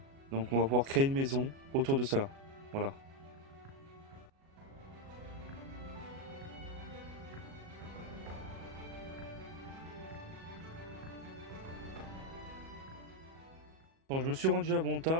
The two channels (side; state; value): left; late; 37 ms